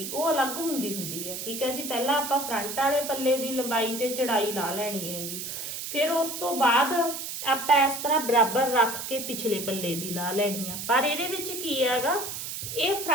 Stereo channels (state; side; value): noise; right; hiss, 6 dB below the sound